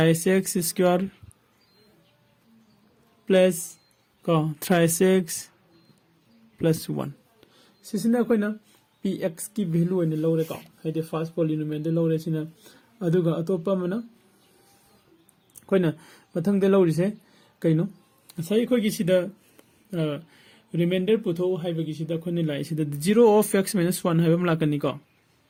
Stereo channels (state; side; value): identical; both; correlation 1.00